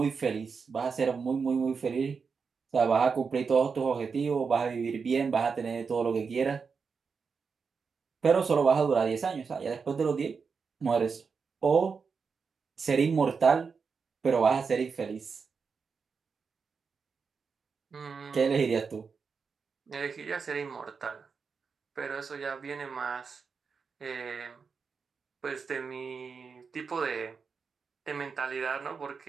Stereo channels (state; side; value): quieter; left; 5.4 dB